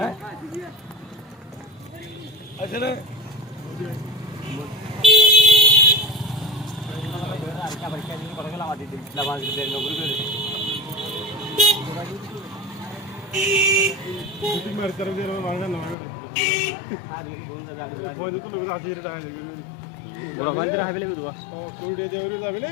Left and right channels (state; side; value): drops out; right; at 16.0 s